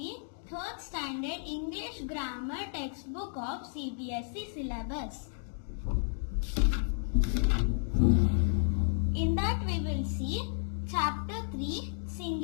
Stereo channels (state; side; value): silent; right; digital silence